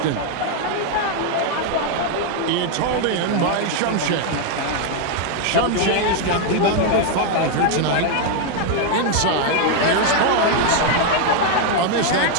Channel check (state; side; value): different; both; correlation 0.01